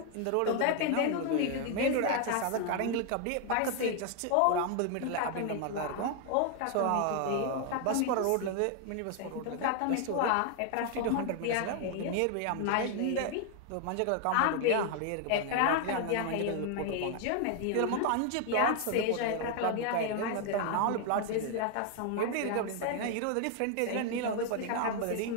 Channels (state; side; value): different; both; correlation 0.00